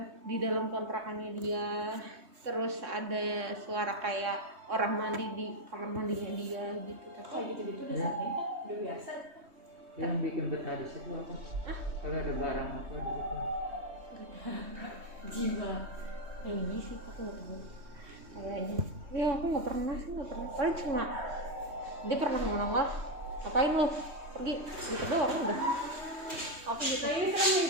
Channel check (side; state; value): left; late; 3.2 ms